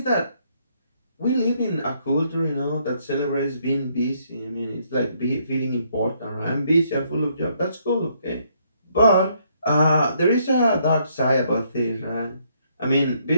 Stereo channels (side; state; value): both; inverted; correlation -0.70